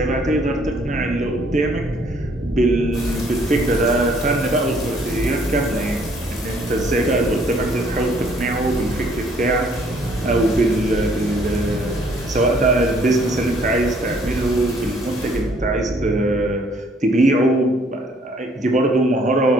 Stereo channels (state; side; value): normal; both; correlation 0.62